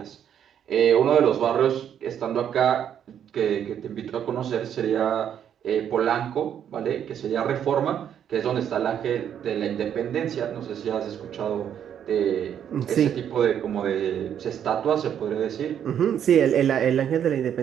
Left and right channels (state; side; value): quieter; left; 9.2 dB